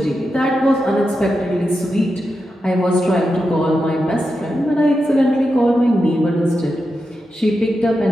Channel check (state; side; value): normal; both; correlation 0.88